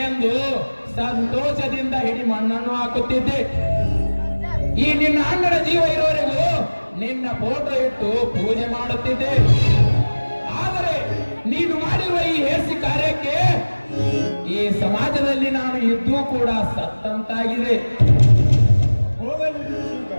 ಎಂದು ಸಂತೋಷದಿಂದ ಹಿಡಿ ಮಣ್ಣನ್ನು ಹಾಕುತ್ತಿದ್ದೆ. ಈ ನಿನ್ನ ಅಣ್ಣನ ಜೀವ ಇರುವವರೆಗೂ ನಿನ್ನ ಫೋಟೋ ಇಟ್ಟು ಪೂಜೆ ಮಾಡುತ್ತಿದ್ದೆ. ಆದರೆ ನೀನು ಮಾಡಿರುವ ಈ ಹೇಸಿ ಕಾರ್ಯಕ್ಕೆ ಈ ಸಮಾಜದಲ್ಲಿ ನಾನು ಇದ್ದೂ ಕೂಡ ಸತ್ತಂತಾಗಿದೆ. ಹೋಗಲಿ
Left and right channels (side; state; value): both; inverted; correlation -1.00